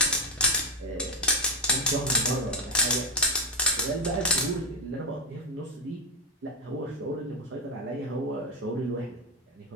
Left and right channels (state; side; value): normal; both; correlation 0.05